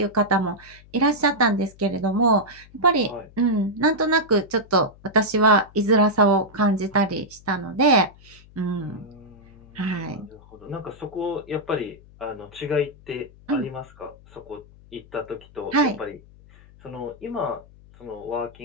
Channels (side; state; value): left; noise; hum, 24 dB below the sound